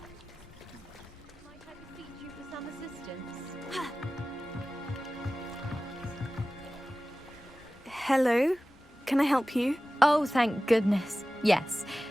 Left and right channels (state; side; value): normal; both; correlation 0.96